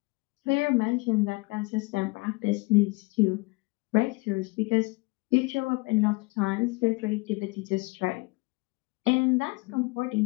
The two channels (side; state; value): right; quieter; 26.2 dB